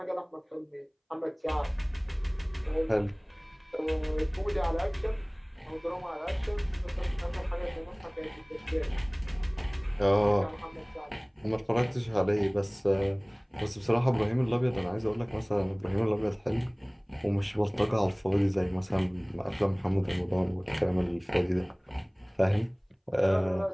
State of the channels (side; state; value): both; identical; correlation 1.00